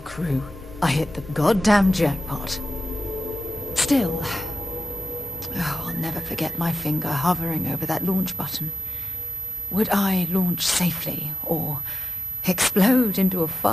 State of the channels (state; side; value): normal; both; correlation 0.93